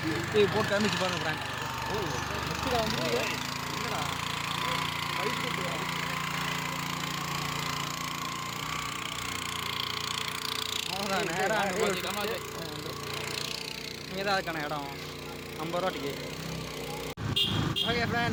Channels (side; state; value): both; identical; correlation 1.00